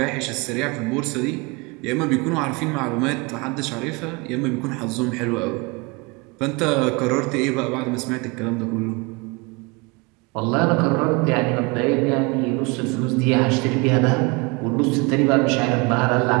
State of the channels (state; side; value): quieter; left; 27.5 dB